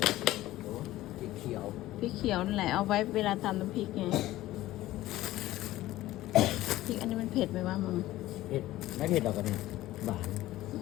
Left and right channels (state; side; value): quieter; right; 15.9 dB